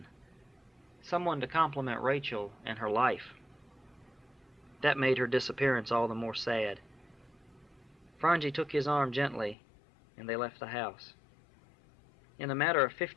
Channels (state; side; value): drops out; right; at 9.6 s